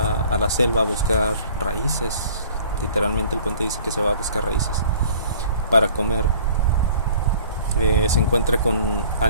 a la selva a buscar raíces, literalmente el cuento dice que se va a buscar raíces para comer, se encuentra con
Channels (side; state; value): both; inverted; correlation -0.50